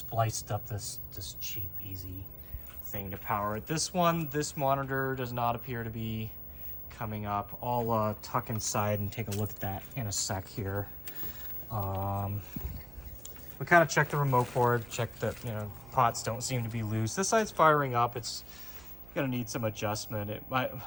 up this cheap easy thing to power it. This monitor does not appear to be coming up. I'll tuck inside and take a look at that in a sec here. We kind of checked the remote board, checked that, pots don't seem to be loose. This side's firing up. It's going to need some adjustment. It might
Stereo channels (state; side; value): noise; right; hum, 17 dB below the sound